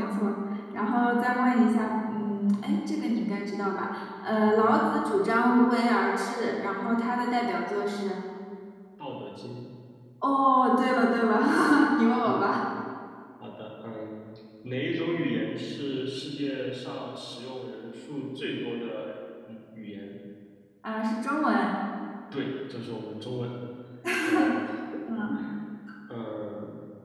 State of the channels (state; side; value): identical; both; correlation 1.00